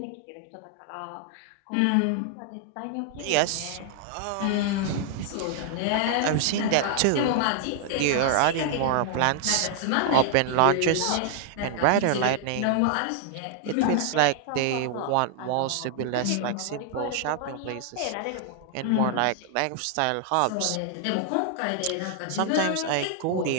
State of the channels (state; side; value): different; both; correlation -0.01